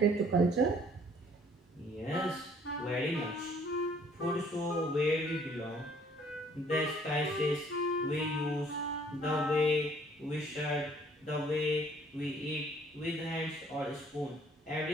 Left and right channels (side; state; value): both; normal; correlation 0.59